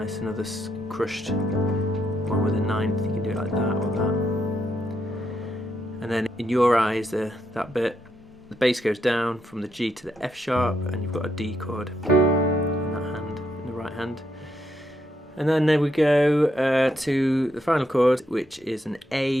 another crushed one with a 9th. You can do it like that or that. And then in Your Eyes, that bit, the bass goes down from the G to the F sharp, and you've got a D chord in that hand, in the right hand. And then there we go to the final chord, which is an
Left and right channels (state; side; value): normal; both; correlation 0.78